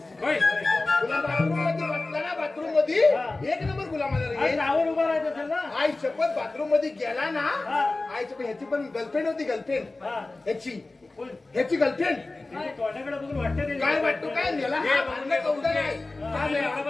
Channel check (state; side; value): quieter; right; 3.2 dB